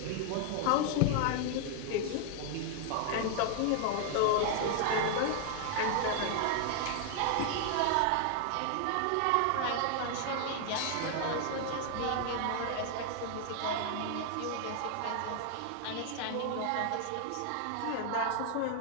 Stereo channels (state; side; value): different; both; correlation 0.00